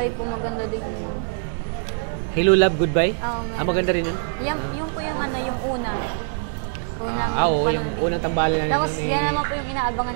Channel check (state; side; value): silent; left; digital silence